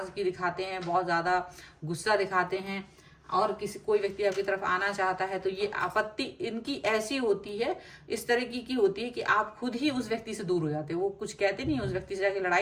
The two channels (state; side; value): identical; both; correlation 1.00